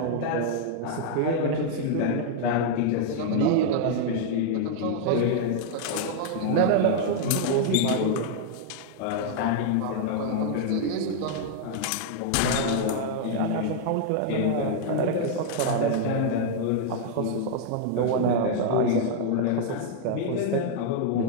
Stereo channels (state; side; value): different; both; correlation -0.01